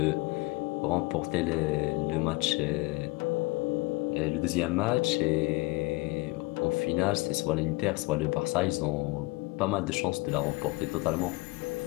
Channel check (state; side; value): quieter; right; 24.2 dB